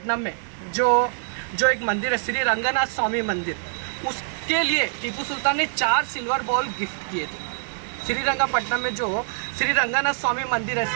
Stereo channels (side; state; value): left; silent; 57 dB below the other